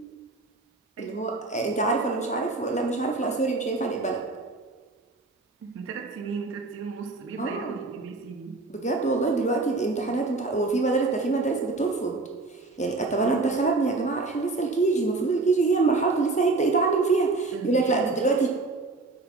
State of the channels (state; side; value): quieter; left; 3.4 dB